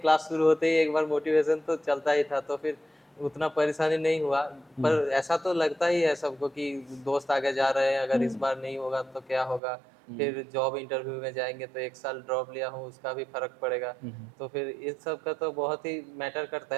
शुरू होते ही एक बार मोटिवेशन तो चलता ही था, तो फिर उतना परेशानी नहीं हुआ। हुँ, पर ऐसा तो लगता ही है सबको कि दोस्त आगे जा रहे हैं, अगर इस हुँ, बार नहीं होगा तो क्या होगा? हुँ, फिर जॉब इंटरव्यू में जाएँगे तो 1 साल ड्रॉप लिया हूँ, उसका भी फ़र्क पड़ेगा। हुँ, हुँ। तो फिर इस सब का तो बहुत ही मैटर करता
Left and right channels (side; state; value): left; drops out; at 9.6 s